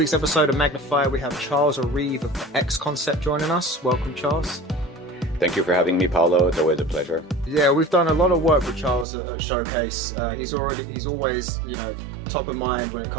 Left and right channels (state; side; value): drops out; left; at 9.1 s